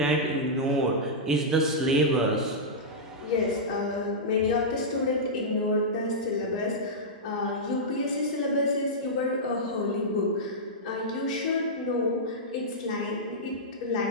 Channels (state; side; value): normal; both; correlation -0.11